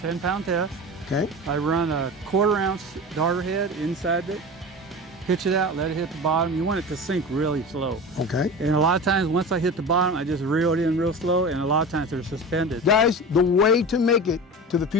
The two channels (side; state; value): both; normal; correlation 0.32